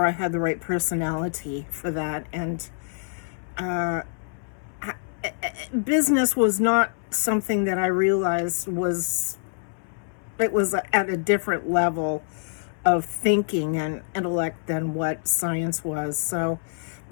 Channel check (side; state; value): right; silent; 61 dB below the other